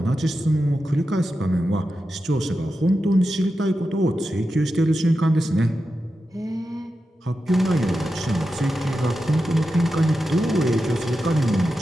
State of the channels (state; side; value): normal; both; correlation 0.90